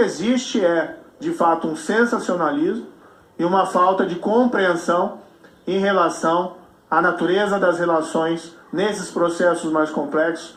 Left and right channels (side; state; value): both; identical; correlation 1.00